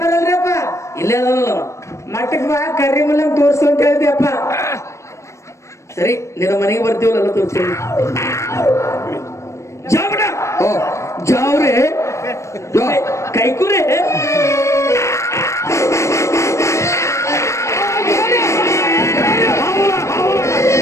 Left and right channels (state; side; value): late; right; 0.14 ms